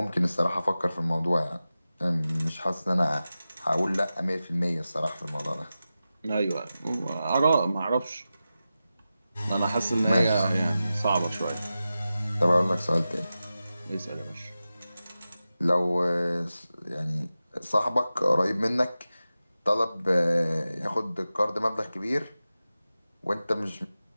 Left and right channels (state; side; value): inverted; both; correlation -0.94